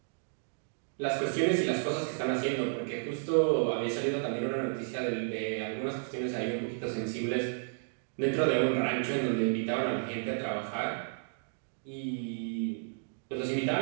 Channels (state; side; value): silent; left; digital silence